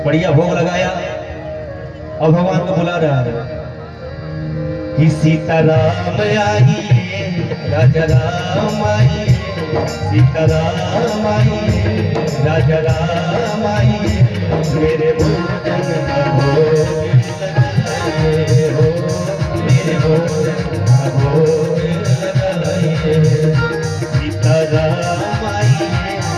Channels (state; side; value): identical; both; correlation 1.00